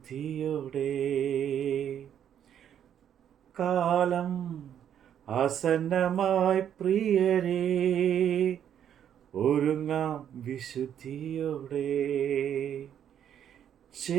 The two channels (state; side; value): quieter; left; 9.5 dB